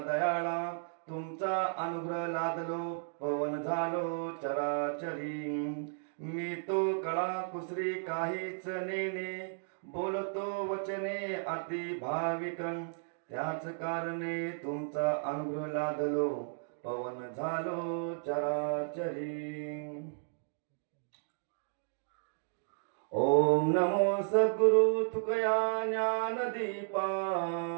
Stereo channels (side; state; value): left; silent; digital silence